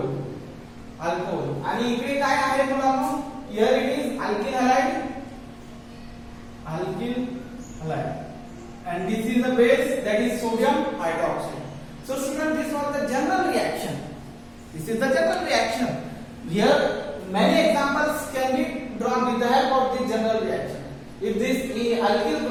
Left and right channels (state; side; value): identical; both; correlation 1.00